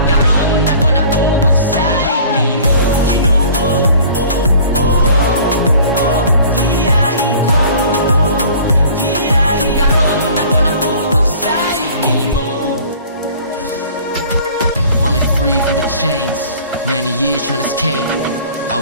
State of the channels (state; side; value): inverted; both; correlation -0.48